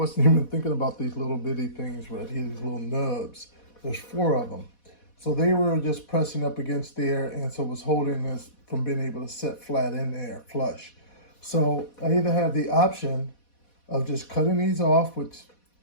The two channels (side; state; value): right; late; 4.1 ms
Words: even thinking about these little bitty things right here, these little nubs. There's 4 of them. So they were just pressing up against there, and so it was holding this from being able to set flat in there, flush. So I either have the option of just cutting these off, which